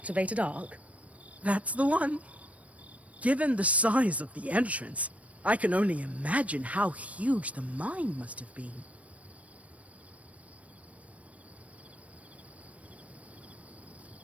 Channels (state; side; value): late; left; 0.066 ms